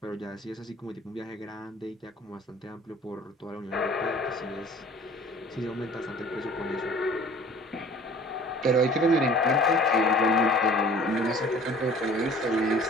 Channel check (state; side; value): normal; both; correlation 0.49